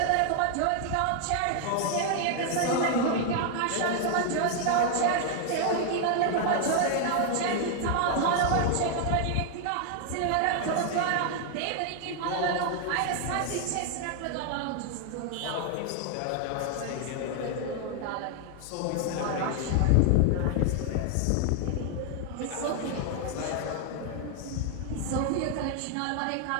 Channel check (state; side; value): different; both; correlation 0.00